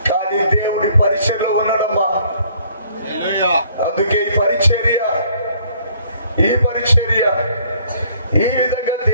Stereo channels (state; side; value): inverted; both; correlation -0.61